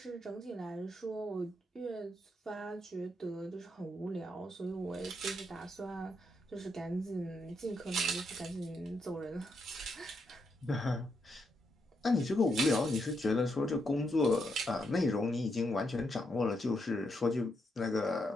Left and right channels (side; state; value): both; normal; correlation 0.80